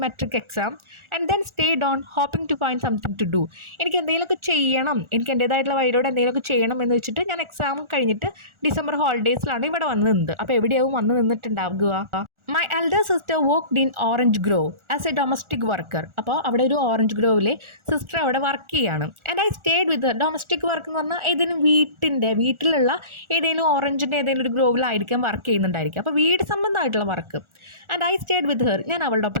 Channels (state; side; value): late; left; 1.4 ms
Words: matric exam and then stayed on hoping to find something to do. എനിക്ക് എന്തെങ്കിലുമൊക്കെ ചെയ്യണം, എനിക്ക് എൻ്റേതായിട്ടുള്ള വഴിയോടെ എന്തെങ്കിലുമൊക്കെ ചെയ്യണം എന്ന് വെച്ചിട്ട് ഞാൻ എക്സാം കഴിഞ്ഞിട്ട് ഡിസംബർ ഹോളിഡേയ്സിലാണ് ഇവിടെ വന്ന് നിന്നത്. അപ്പോൾ എവിടെയാവും വന്ന് നിന്നിട്ടുണ്ടാവുക? My elder sister worked in Orange Grove as a domestic worker. അപ്പോൾ അവിടെ ഒരു ഓറഞ്ച് ഗ്രോവിലെ സിസ്റ്റർ അവിടെ വർക്ക് ചെയ്യാണ്. And I stayed with her. Domestic work എന്ന് പറഞ്ഞാൽ ഏതെങ്കിലും വീട്ടിലുള്ള ഏതെങ്കിലും ഓറഞ്ചിൻ്റെ ഏതെങ്കിലും ഒരു ഗ്രോവിലായിരിക്കും വർക്ക് ചെയ്യുന്നുണ്ടായിരിക്കും. അപ്പോൾ വീട് സംബന്ധമായിട്ടുള്ള work. And I stayed with her. ഞാൻ അവളുടെ